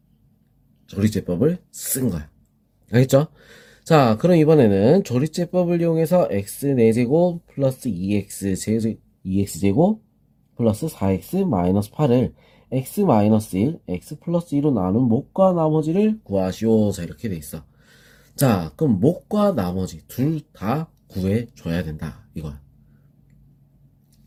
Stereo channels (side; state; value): both; identical; correlation 1.00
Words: 조리제법을 쓴 거야. 알겠죠? 자, 그럼 이번에는 조리제법을 이용해서 x 4제곱 플러스 2x제곱 플러스 4x 마이너스 8을 x 마이너스 1, x 플러스 2로 나눈 몫과 나머지를 구하시오. 자, 이렇게 돼 있어. 자, 그럼 몫과 나머지 둘 다 구해줘야 된다. 이거야.